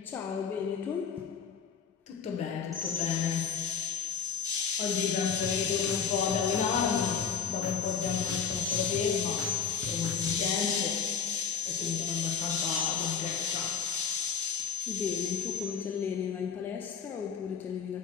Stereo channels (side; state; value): right; quieter; 6.6 dB